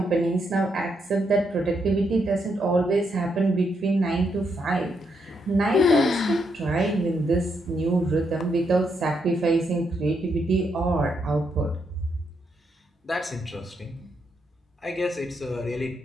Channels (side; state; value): both; normal; correlation 0.78